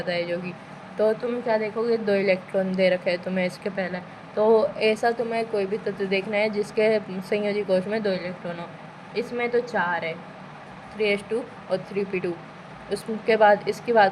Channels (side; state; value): both; identical; correlation 1.00